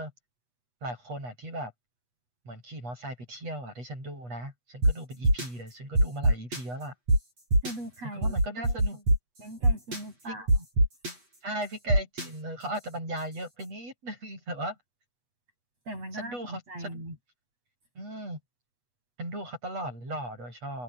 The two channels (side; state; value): left; late; 8.2 ms